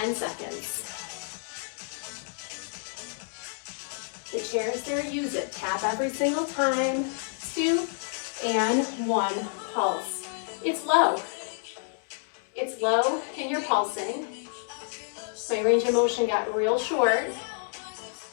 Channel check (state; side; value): silent; right; 59 dB below the other